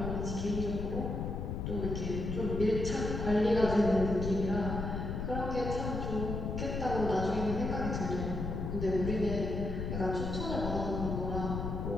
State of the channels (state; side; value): noise; left; rumble, 3 dB below the sound